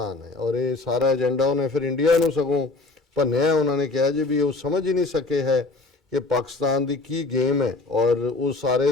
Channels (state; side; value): quieter; right; 3.3 dB